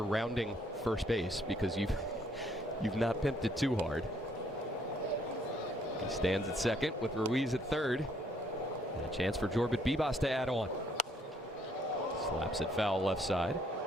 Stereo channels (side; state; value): both; normal; correlation 0.67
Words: rounding first base, because you've not pimped it too hard. He stands at second with Ruiz at third. And a chance for Jorbit Bibas to add on. Slaps it foul left side.